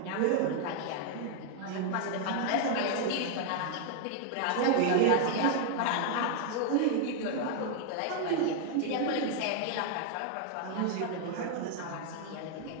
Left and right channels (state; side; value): different; both; correlation 0.00